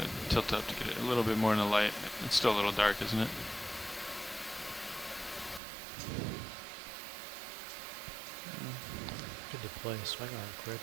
to tilt up to get it a little bit more in the light. It's still a little dark, isn't it? Good to play a swing arm, Crib.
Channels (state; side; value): drops out; left; at 5.6 s